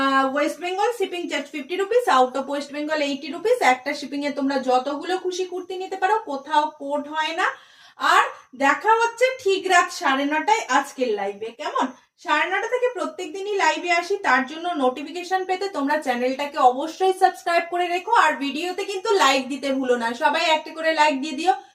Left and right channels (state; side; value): identical; both; correlation 1.00